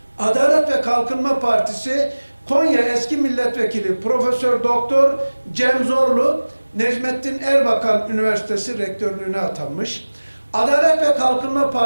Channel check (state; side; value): inverted; both; correlation -1.00